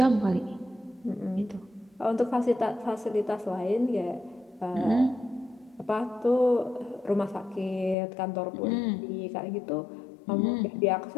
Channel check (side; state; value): right; drops out; at 8.0 s